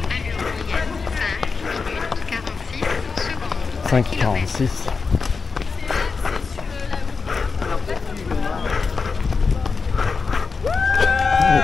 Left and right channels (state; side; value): quieter; right; 4.8 dB